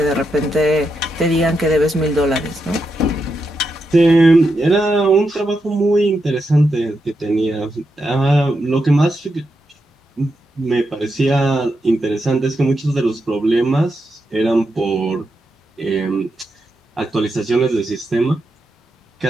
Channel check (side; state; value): both; normal; correlation 0.85